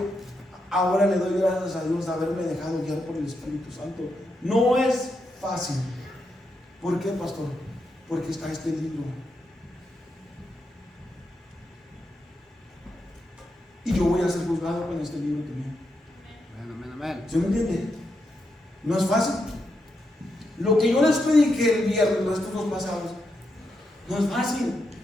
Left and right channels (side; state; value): both; normal; correlation 0.83